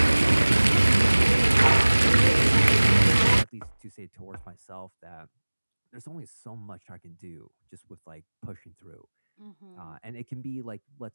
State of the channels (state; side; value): inverted; both; correlation -1.00